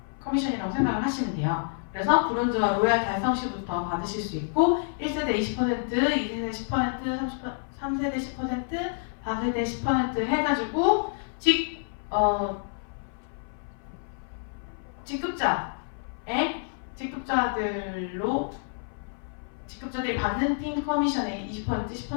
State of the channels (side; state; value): right; silent; 58 dB below the other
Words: 커미션이라고 생각을 하시면 돼요. 그래서 브론즈와 로얄 달성 시부터 받으실 수 있고 1세대 20%, 2세대 10%, 3세대 10%, 4세대 10% 해가지고 직급자들이 받는 팀 커미션의 20%,